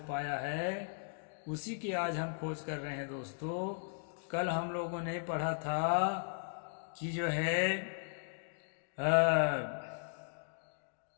पाया है उसी की आज हम खोज कर रहे हैं दोस्तों। कल हम लोगों ने पढ़ा था कि जो है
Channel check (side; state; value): right; silent; digital silence